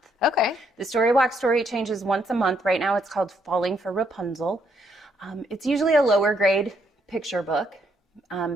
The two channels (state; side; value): normal; both; correlation 0.73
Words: Okay. The StoryWalk story changes once a month. Right now it's called Falling for Rapunzel. It's usually a lower grade picture book,